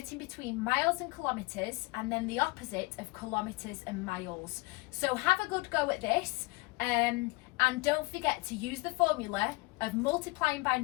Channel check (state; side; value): quieter; right; 24.8 dB